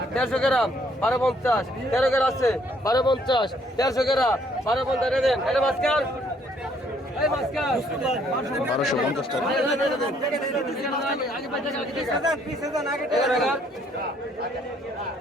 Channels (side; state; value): both; normal; correlation 0.65